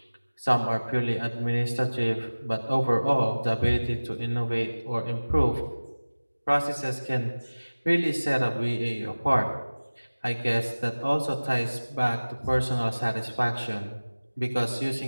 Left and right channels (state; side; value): inverted; both; correlation -1.00